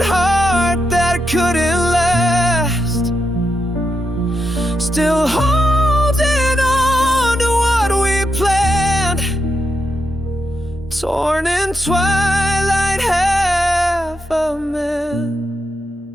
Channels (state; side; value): normal; both; correlation 0.84